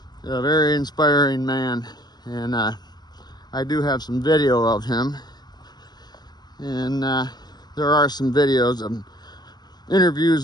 a very inspiring man, and I do have some video of him, and there are some videos of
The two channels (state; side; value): late; right; 0.20 ms